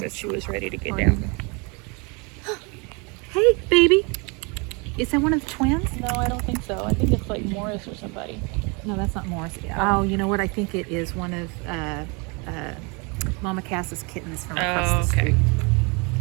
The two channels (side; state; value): left; quieter; 30.9 dB